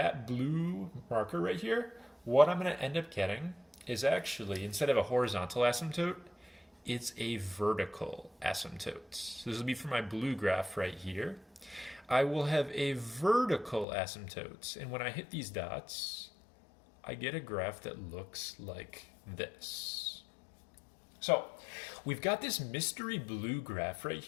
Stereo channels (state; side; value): drops out; right; at 13.9 s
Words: blue marker right here, what I'm going to end up getting is actually, instead of a horizontal asymptote, it's a vertical asymptote. So this will be for my blue graph right here. I will have a vertical asymptote, and when I hit these dots, I get a graph that looks like this. So we've got this mystery blue graph right